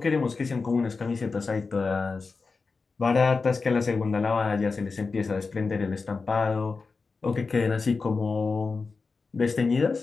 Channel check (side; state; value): right; quieter; 4.4 dB